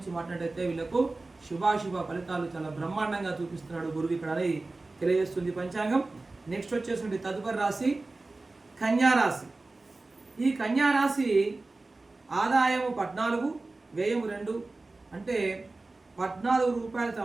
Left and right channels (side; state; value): left; quieter; 3.3 dB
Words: మాట్లాడినట్టయితే వీళ్ళకు శుభాశుభ ఫలితాలు చాలా బ్రహ్మాండంగా చూపిస్తున్నాడు గురువు ఇక్కడ అని తెలియజేస్తుంది పంచాంగం. నెక్స్ట్ వచ్చేసి తదుపరి రాశి కన్యా రాశి. ఈ కన్యా రాశి ఆదాయము 14, వ్యయము 2. అంటే 14 రూపాయలు